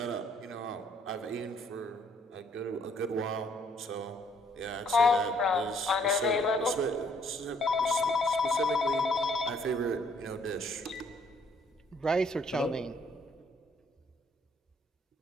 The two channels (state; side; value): normal; both; correlation 0.65